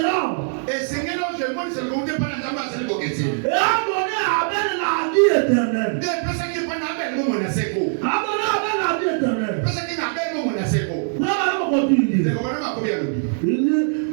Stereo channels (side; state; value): left; silent; 64 dB below the other